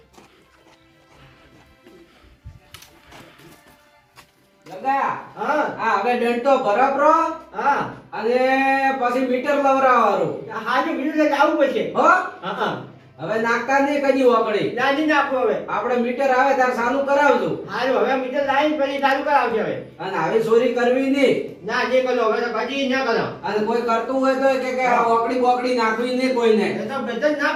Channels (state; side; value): identical; both; correlation 1.00